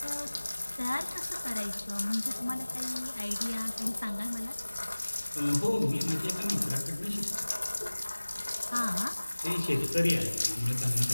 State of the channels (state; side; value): inverted; both; correlation -1.00